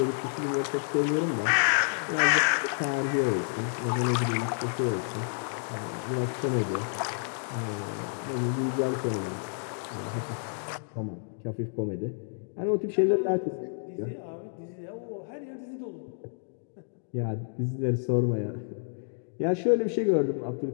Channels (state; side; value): silent; right; digital silence